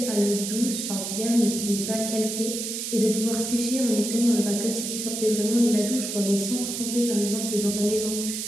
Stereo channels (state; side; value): noise; right; hiss, 4 dB below the sound